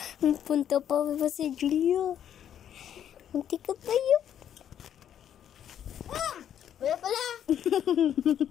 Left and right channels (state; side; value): quieter; right; 9.8 dB